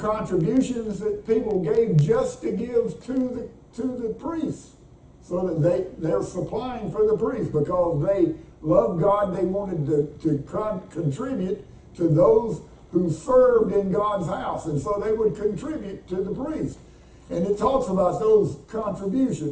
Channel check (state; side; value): identical; both; correlation 1.00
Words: that people gave just to give to the priests, so that they're supplying for the priests because they loved God. They wanted to contribute to those who served in God's house, and so they would contribute to the priest. And it talks about those